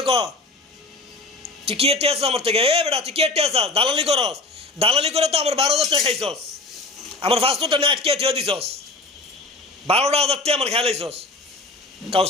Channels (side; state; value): right; quieter; 3.2 dB